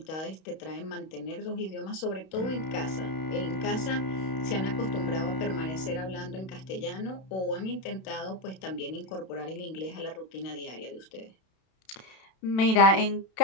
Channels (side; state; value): right; late; 32 ms